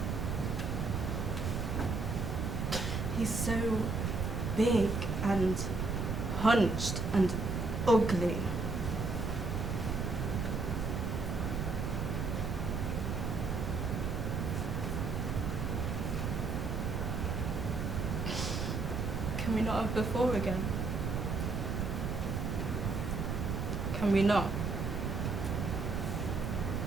He's so big and hunched and ugly. Can we not have before again? Can we not?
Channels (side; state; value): right; noise; rumble, 1 dB below the sound